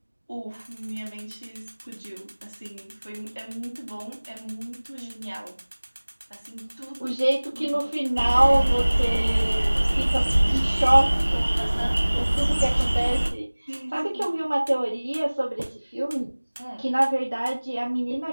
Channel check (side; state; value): both; inverted; correlation -1.00